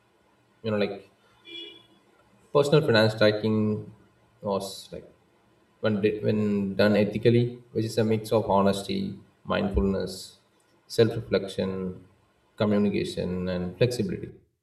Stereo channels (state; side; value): identical; both; correlation 1.00